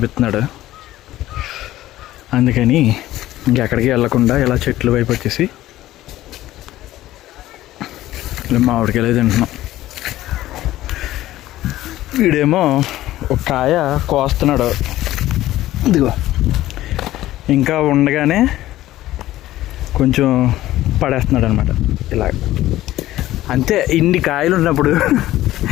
అందుకని ఇంకెక్కడికి వెళ్ళకుండా ఇలా చెట్ల వైపు వచ్చేసి ఇలా మామిడికాయలు తింటున్నాం. వీడేమో ఒక కాయ కోస్తున్నాడు. ఇదిగో ఇంకా ఉండగానే కొంచెం పడేస్తున్నాడు అనమాట. ఇలా అంతే. ఇన్ని కాయలు ఉన్నప్పుడు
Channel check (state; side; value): quieter; right; 15.1 dB